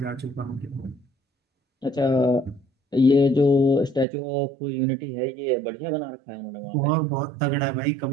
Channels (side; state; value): left; drops out; at 4.0 s